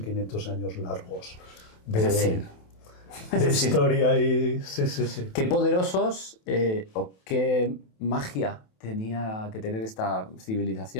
años largos Es decir, de historia y sí, sí, sí. qué poderosos o qué magia tenía que tener esta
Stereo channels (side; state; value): right; late; 27 ms